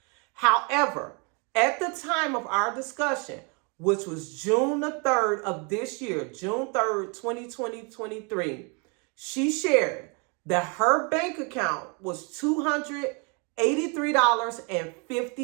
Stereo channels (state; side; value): quieter; left; 33.7 dB